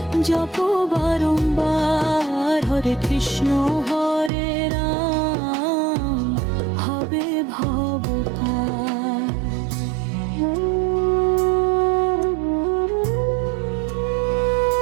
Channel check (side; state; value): left; drops out; at 4.3 s